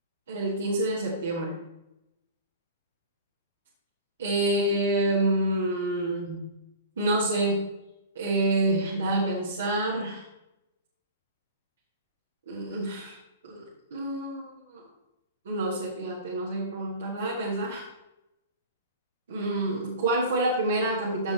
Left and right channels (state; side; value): inverted; both; correlation -0.38